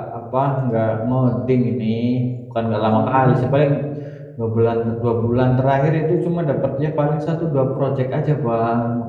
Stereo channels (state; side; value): identical; both; correlation 1.00